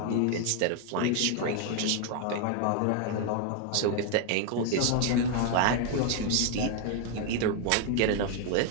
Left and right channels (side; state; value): both; different; correlation 0.01